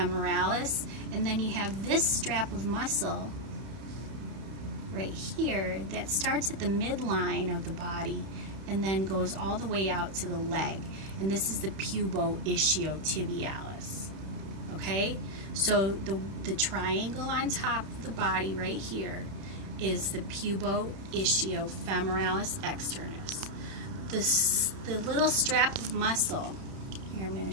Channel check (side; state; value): left; late; 31 ms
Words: and then you have this strap of muscle right here that starts at the midline of the body and then goes all the way out to the leg. And this is the pubo-ischiotibialis. Okay, so the triangle on top of the body right here is the pubo-ischiofemoralis externus. The little strap of muscle, here I'm going